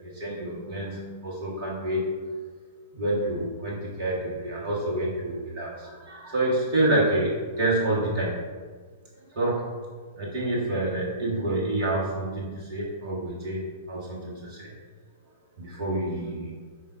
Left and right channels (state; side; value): inverted; both; correlation -0.39